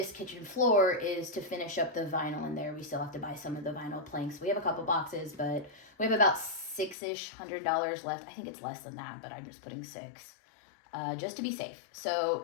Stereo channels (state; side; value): drops out; right; at 7.0 s